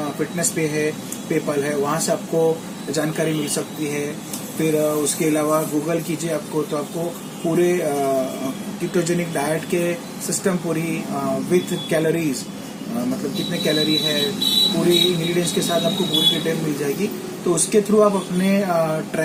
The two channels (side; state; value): both; identical; correlation 1.00